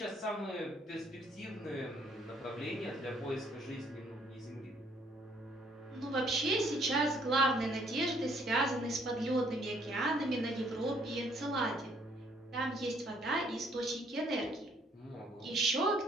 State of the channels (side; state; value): both; normal; correlation 0.65